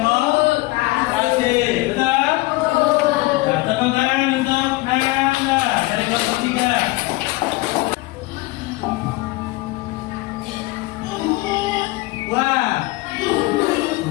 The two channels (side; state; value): right; quieter; 21.0 dB